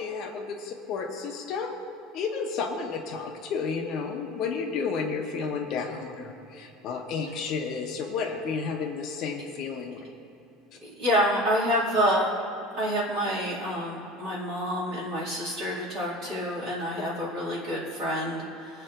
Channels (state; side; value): normal; both; correlation 0.37